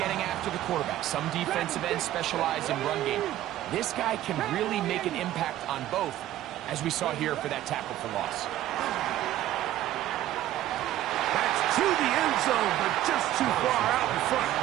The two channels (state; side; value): quieter; left; 13.5 dB